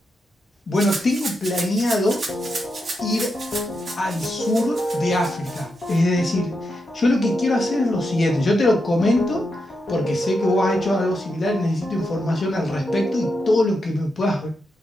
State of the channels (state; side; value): normal; both; correlation 0.85